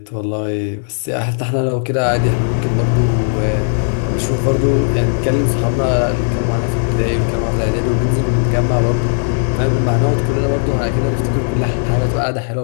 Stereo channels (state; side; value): silent; right; digital silence